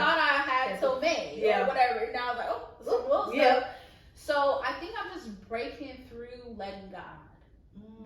I had till May or whatever. And I was like, oh, some little stuff. So I think I'm just breaking through letting God.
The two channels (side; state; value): both; identical; correlation 1.00